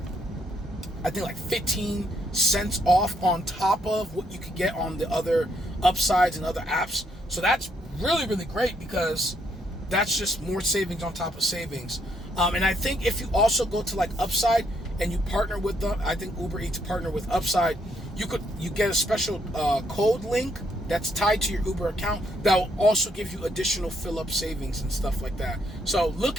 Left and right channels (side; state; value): both; normal; correlation 0.73